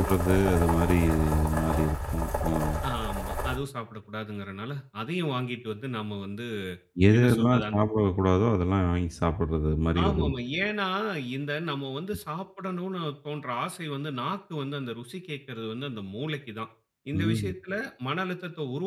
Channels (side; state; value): both; identical; correlation 1.00